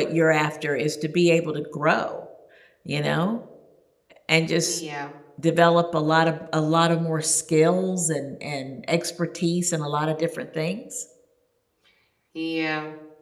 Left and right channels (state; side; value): identical; both; correlation 1.00